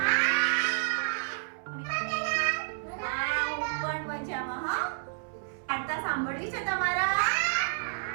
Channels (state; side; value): silent; left; 58 dB below the other